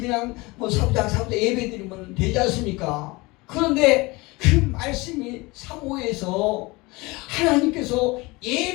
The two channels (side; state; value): right; quieter; 23.5 dB